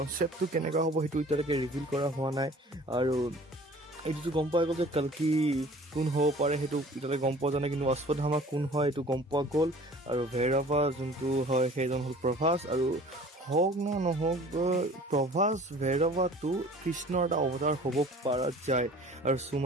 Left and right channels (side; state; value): both; normal; correlation 0.47